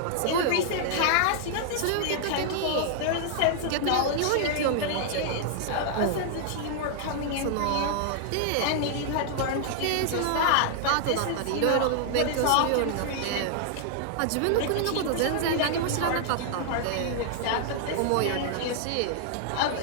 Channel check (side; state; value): both; different; correlation -0.01